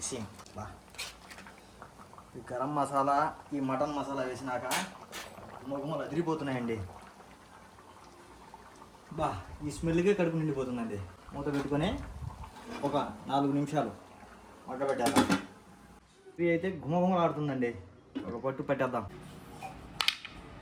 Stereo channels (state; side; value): identical; both; correlation 1.00